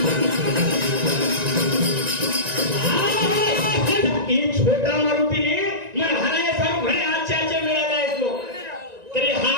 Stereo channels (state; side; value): late; left; 1.9 ms